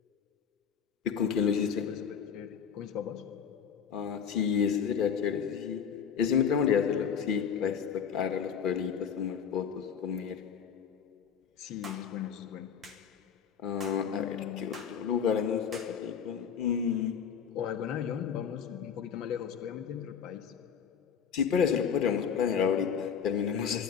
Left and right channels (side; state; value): right; quieter; 7.4 dB